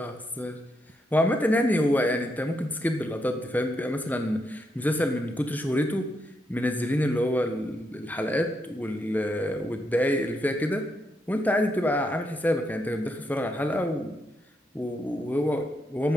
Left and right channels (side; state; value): both; normal; correlation 0.80